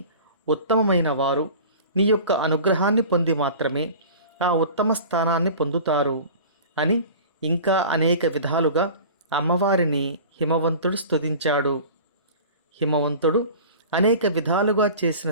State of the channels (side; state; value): both; inverted; correlation -0.39